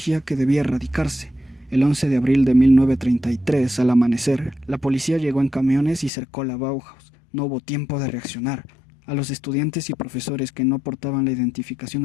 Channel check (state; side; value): drops out; right; at 6.1 s